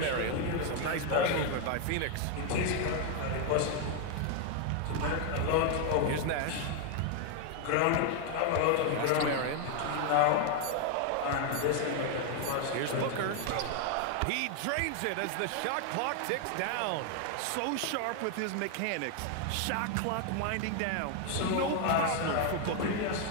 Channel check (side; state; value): both; different; correlation 0.01